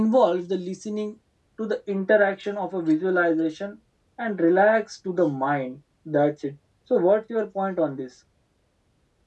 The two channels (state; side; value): identical; both; correlation 1.00